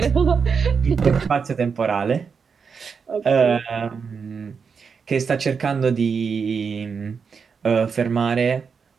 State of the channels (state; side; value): quieter; left; 5.8 dB